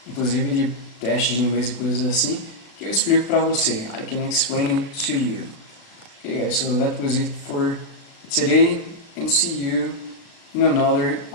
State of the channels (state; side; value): late; right; 36 ms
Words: inclusive de testes de inglês e coisas assim, que eu explico para você. I can explain it to you. Okay guys, so that was it for today, and see you in another